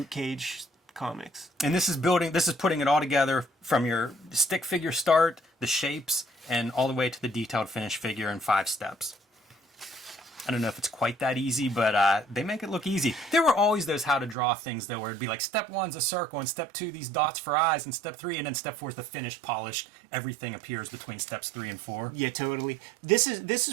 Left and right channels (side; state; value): left; drops out; at 14.4 s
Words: Cage comics. And this is putting it all together from your stick figure start, the shapes, and all the way to the detailed finished figure in 5 steps. I don't know if it's quite that easy, but they make it look easy. There were always those how to draw things, though, where it'd be like step 1's a circle, and step 2 these dots for eyes, and step 3, and then step 4 is the finished, polished. Everything appears between steps 3 and 4. Yeah, totally. This